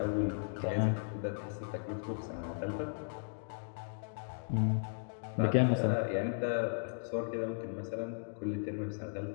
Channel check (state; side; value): silent; right; digital silence